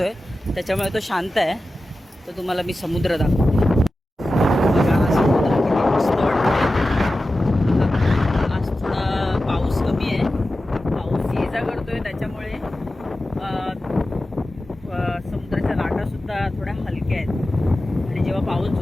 आहे त्याच्यामुळे तो शांत आहे. तर तुम्हाला मी समुद्र दाखवते. बघा हा समुद्र किती मस्त वाटतं. आज थोडा पाऊस कमी आहे, पाऊस ये जा करतो आहे त्याच्यामुळे समुद्राच्या लाटासुद्धा थोड्या हलक्या आहेत. आणि जेव्हा पाऊस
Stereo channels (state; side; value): normal; both; correlation 0.94